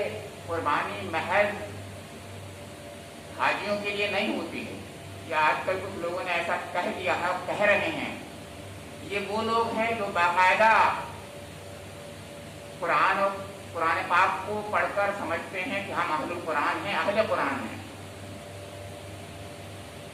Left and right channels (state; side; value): identical; both; correlation 1.00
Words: قربانی محض حاجیوں کے لیے نہیں ہوتی ہے، یا آج کل کچھ لوگوں نے ایسا کہہ دیا ہے، کہہ رہے ہیں۔ یہ وہ لوگ ہیں جو باقاعدہ قرآن اور قرآن پاک کو پڑھ کر سمجھتے ہیں کہ ہم اہل قرآن ہیں، اہل قرآن ہیں۔